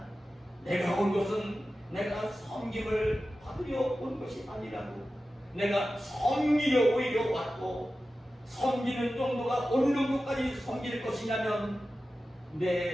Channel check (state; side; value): normal; both; correlation 0.94